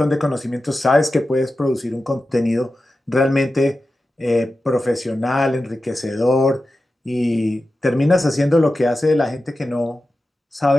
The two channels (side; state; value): both; normal; correlation 0.93